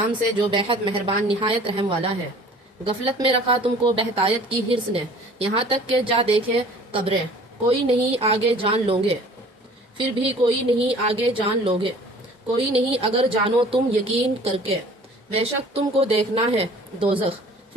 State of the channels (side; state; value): both; normal; correlation 0.49